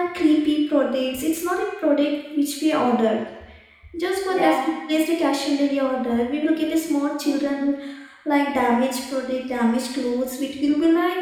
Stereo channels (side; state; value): both; identical; correlation 1.00